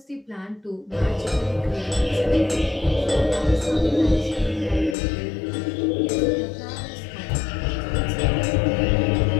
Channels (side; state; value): right; drops out; at 5.0 s